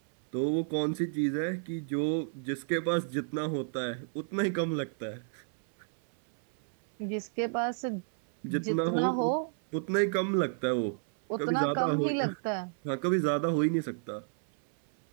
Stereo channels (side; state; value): left; silent; 57 dB below the other